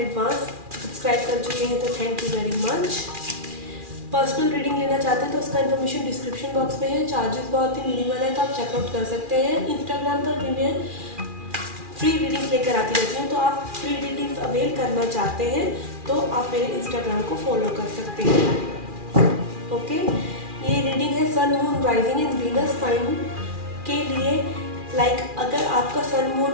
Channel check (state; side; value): late; left; 2.4 ms